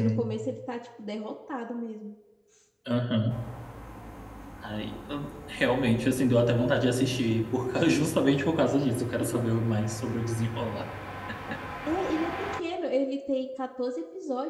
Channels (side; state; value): both; identical; correlation 1.00